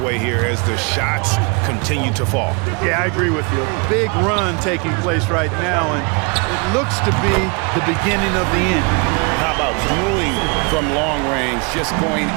here as the shots continue to fall. Yeah, I agree with you. A big run taking place right now, and it looks to be the beginning of the end. How about dueling from long range, just going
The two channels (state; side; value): quieter; left; 31.8 dB